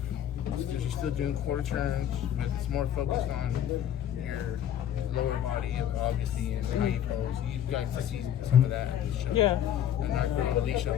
You're still doing quarter turns, but it's more focused on your lower body, obviously, and how you pose. You guys to see some of that at the show. Yeah. And our girl Alicia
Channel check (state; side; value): quieter; right; 10.4 dB